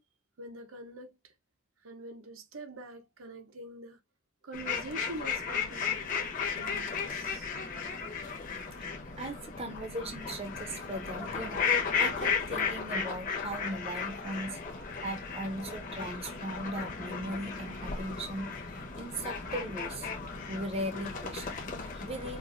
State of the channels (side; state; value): right; quieter; 3.6 dB